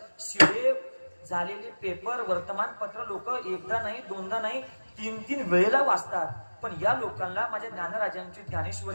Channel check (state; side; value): inverted; both; correlation -1.00